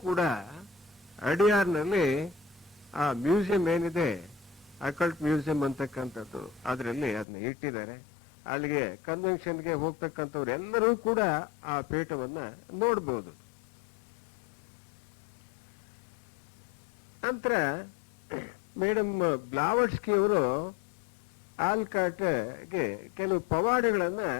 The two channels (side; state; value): right; drops out; at 7.2 s